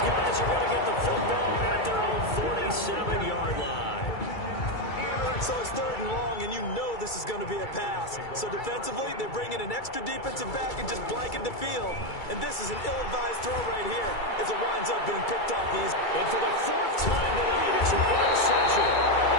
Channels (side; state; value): right; late; 2.3 ms